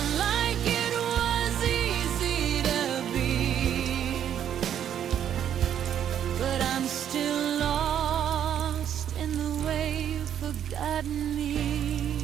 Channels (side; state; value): left; quieter; 9.7 dB